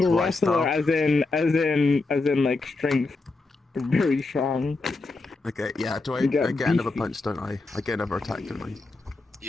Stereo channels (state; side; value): quieter; right; 3.5 dB